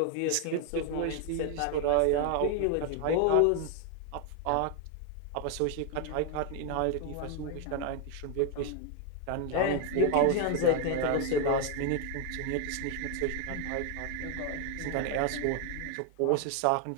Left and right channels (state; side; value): different; both; correlation 0.01